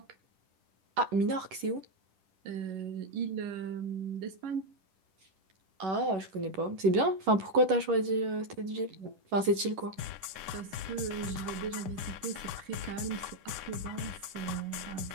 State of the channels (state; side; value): late; left; 11 ms